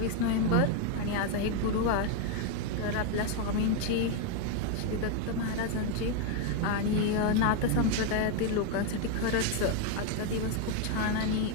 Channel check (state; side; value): different; both; correlation 0.01